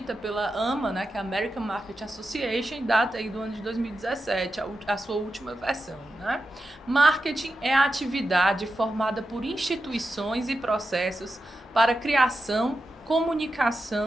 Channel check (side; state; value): both; normal; correlation 0.90